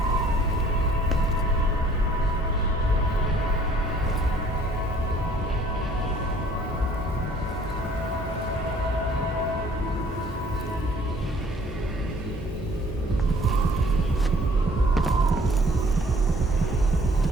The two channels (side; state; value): both; normal; correlation 0.57